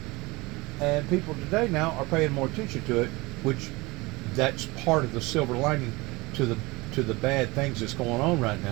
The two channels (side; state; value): left; quieter; 23.2 dB